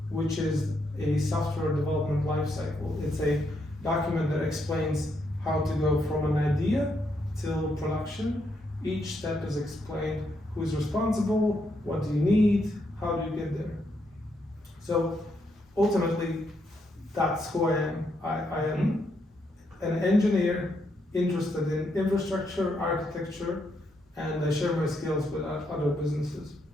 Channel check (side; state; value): both; normal; correlation 0.78